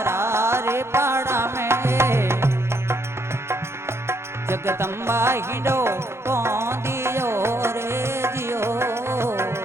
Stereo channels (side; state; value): left; late; 0.13 ms